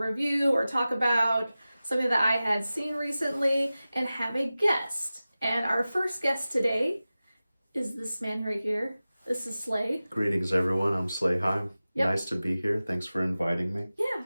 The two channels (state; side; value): inverted; both; correlation -0.96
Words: or talk about something that I had seen recently and have a guest. And our first guest today is this man right here. This is Slay. Greetings, everyone. I'm Slayheim. Yep. Nice to be here. Thanks for inviting me. Yeah,